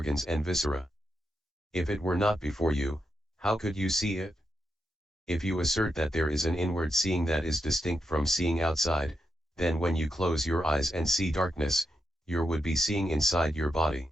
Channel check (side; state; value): both; normal; correlation 0.85